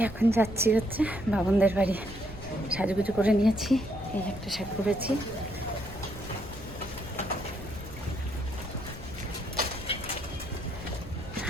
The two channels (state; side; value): noise; left; rumble, 14 dB below the sound